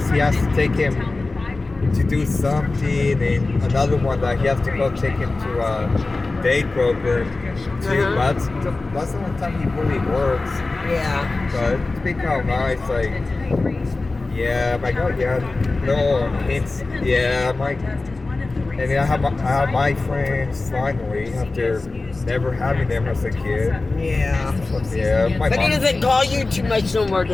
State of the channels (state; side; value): quieter; right; 3.4 dB